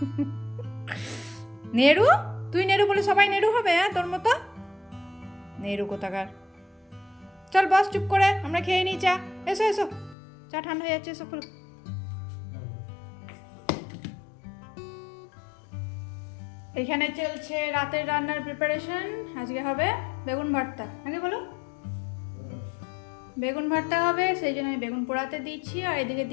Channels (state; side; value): drops out; right; at 10.2 s